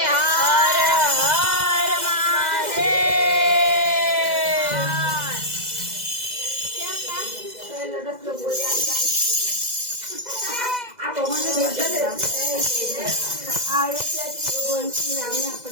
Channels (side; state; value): left; late; 2.0 ms